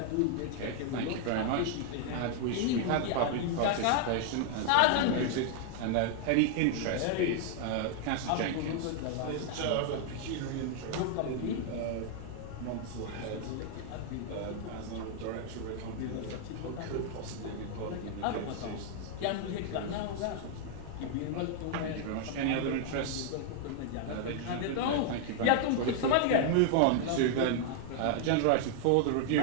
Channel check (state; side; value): different; both; correlation 0.00